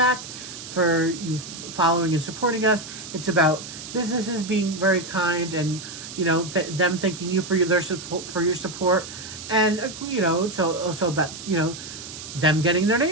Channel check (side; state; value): right; noise; hiss, 12 dB below the sound